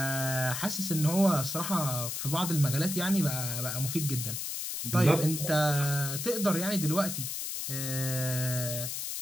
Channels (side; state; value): left; noise; hiss, 4 dB below the sound